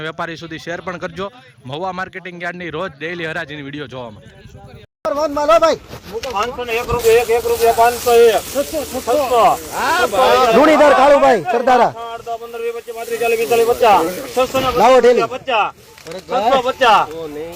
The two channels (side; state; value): both; identical; correlation 1.00